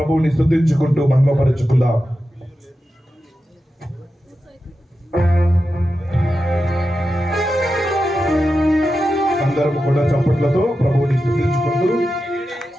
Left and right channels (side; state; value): both; normal; correlation 0.90